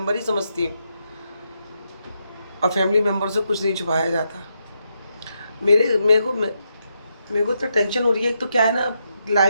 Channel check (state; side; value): inverted; both; correlation -0.81